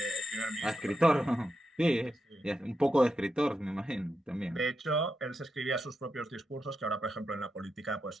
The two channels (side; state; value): both; normal; correlation 0.86